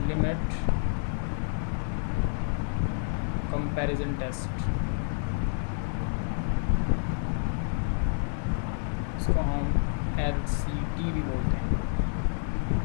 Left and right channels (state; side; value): silent; right; digital silence